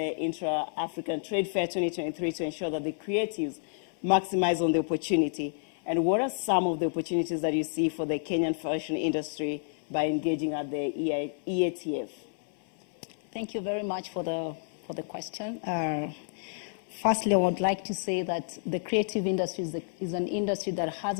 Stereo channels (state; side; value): silent; right; 58 dB below the other